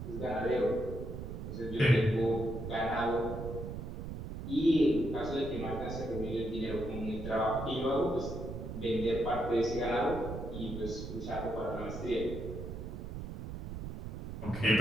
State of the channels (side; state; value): right; noise; rumble, 7 dB below the sound